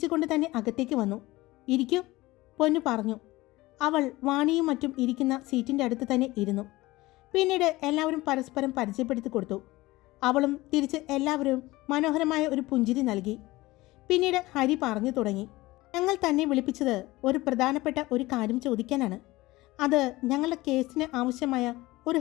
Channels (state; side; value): quieter; right; 19.5 dB